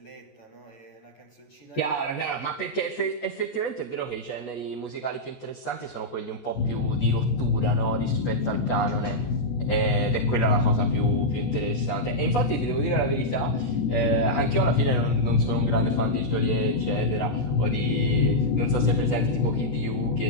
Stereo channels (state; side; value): late; right; 14 ms